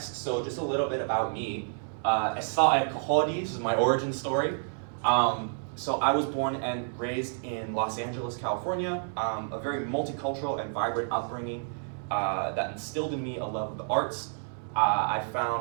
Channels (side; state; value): left; silent; digital silence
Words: So just a little bit about me. This is my origin story. So I was born and raised in Los Angeles, California, a very multicultural and vibrant upbringing that instilled in me a love of the arts. I